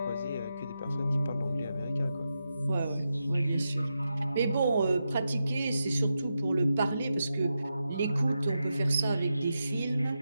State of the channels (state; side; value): inverted; both; correlation -0.88